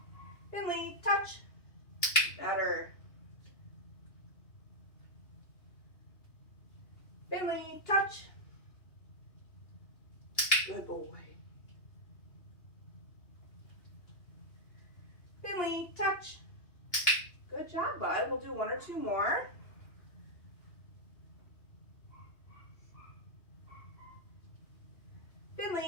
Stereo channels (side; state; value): right; late; 2.8 ms